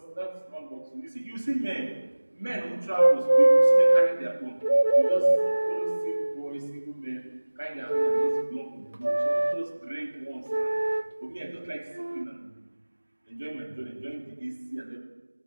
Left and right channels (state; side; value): inverted; both; correlation -1.00